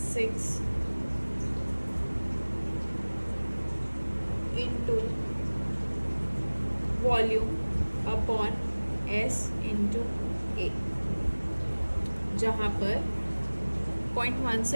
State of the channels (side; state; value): both; inverted; correlation -1.00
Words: into volume upon S into A, जहाँ पर